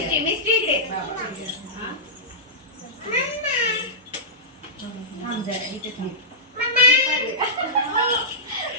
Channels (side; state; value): both; normal; correlation -0.13